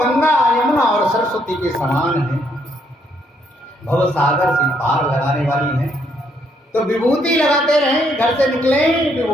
यमुना और सरस्वती के समान है, भव सागर से पार लगाने वाली है। तो विभूति लगाते रहें, घर से निकले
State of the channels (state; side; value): normal; both; correlation 0.72